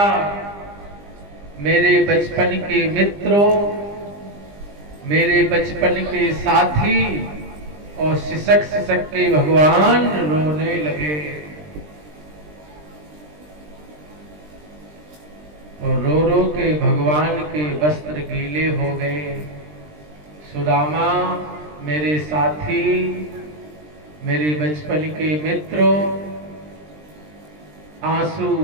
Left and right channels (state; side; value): late; left; 20 ms